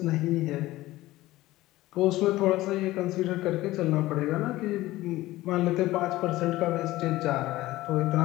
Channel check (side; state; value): right; quieter; 17.3 dB